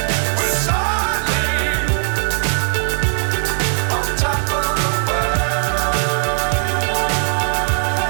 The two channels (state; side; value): silent; left; digital silence